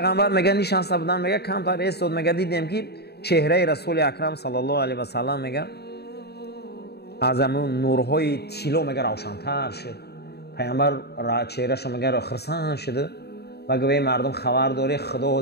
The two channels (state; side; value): late; right; 0.47 ms